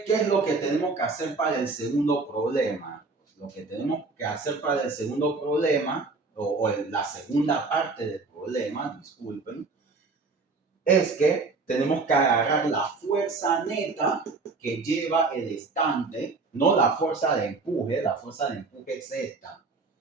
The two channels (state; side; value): quieter; left; 4.0 dB